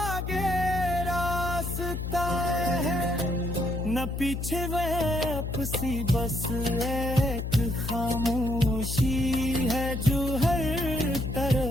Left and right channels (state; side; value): noise; left; hum, 4 dB below the sound